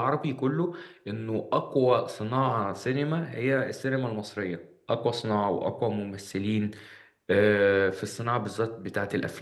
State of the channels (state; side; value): identical; both; correlation 1.00